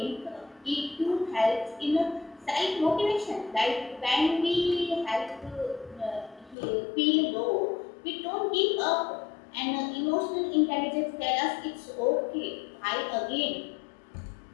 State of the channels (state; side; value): drops out; right; at 6.6 s